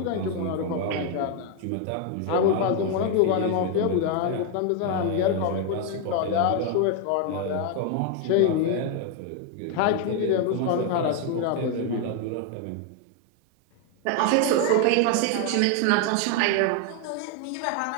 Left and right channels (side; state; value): both; different; correlation 0.00